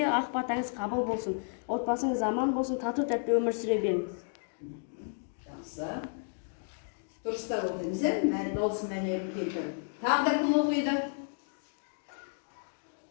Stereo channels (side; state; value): right; silent; digital silence